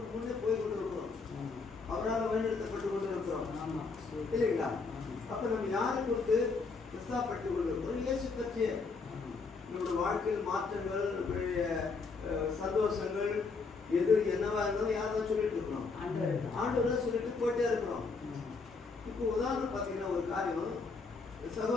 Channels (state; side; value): quieter; right; 4.4 dB